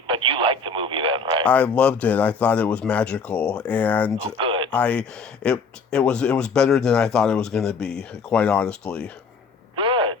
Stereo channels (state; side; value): quieter; right; 4.6 dB